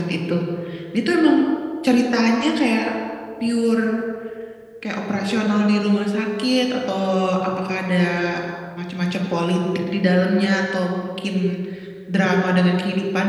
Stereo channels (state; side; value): identical; both; correlation 1.00